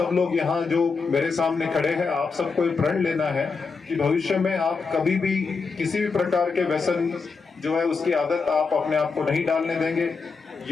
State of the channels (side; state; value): right; quieter; 4.8 dB